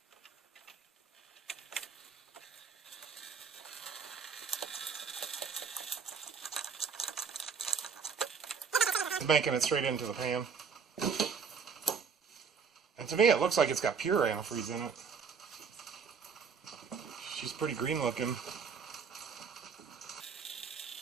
making it straight into the pan. And to me, it looks like it's got pure antifreeze in it. She's pretty green looking.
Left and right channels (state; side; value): quieter; left; 6.0 dB